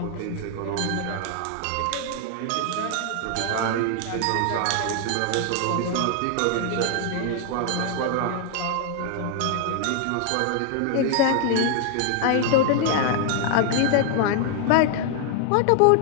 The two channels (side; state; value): both; different; correlation 0.00